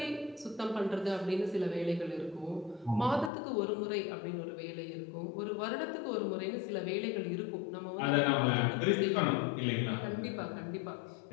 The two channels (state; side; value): drops out; right; at 3.3 s